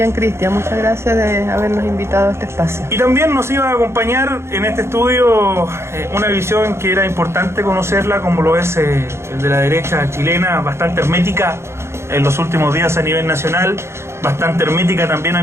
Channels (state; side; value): late; left; 0.13 ms